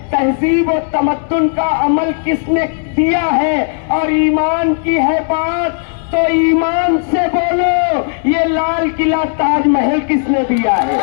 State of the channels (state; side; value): silent; right; digital silence